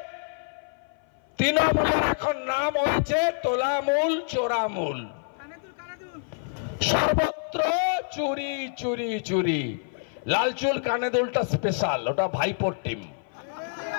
তৃণমূলের এখন নাম হয়েছে তোলামূল, চোরামূল, সর্বত্র চুরি চুরি চুরি। লালচুল কানেদুলটা স্পেশাল, ওটা ভাইপোর টিম।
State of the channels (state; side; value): silent; right; 56 dB below the other